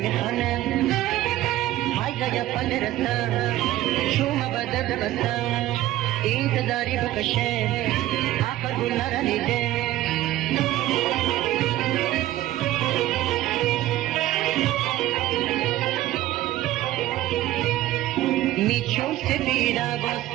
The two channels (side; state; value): left; quieter; 15.0 dB